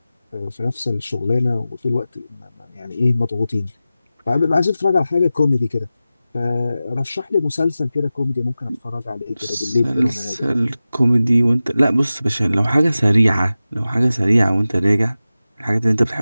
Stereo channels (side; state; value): both; inverted; correlation -0.95